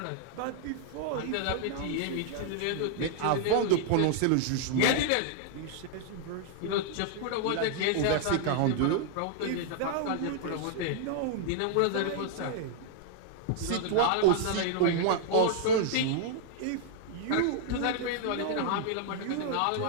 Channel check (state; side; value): different; both; correlation -0.01